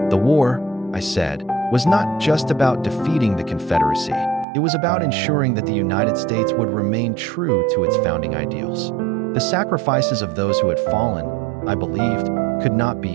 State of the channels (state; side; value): drops out; left; at 4.5 s